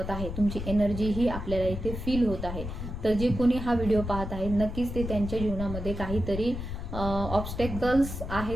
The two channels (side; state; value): left; noise; rumble, 6 dB below the sound